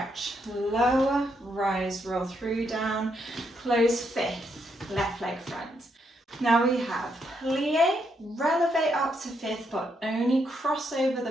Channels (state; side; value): normal; both; correlation 0.77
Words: lower, rise, roll through, down, close fifth, left leg front. Now we have plie, relevé up to fifth, but only cross over the